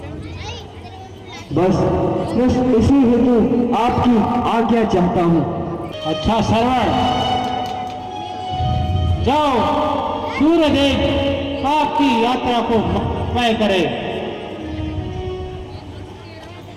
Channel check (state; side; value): identical; both; correlation 1.00